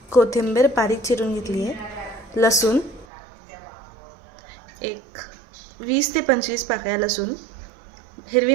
कोथिंबीर बारीक चिरून घेतली आहे, लसूण एक 20 ते 25 पाकळ्या लसूण, हिरवी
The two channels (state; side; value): drops out; left; at 3.1 s